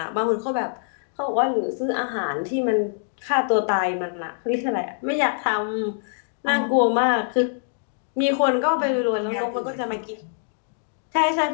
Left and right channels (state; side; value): silent; right; digital silence